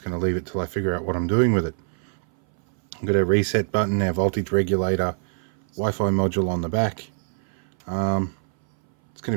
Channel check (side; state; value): left; silent; 60 dB below the other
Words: going to leave it till I figure out what I'm doing with it. I've got a reset button, our voltage regulator, Wi-Fi module on the back. It's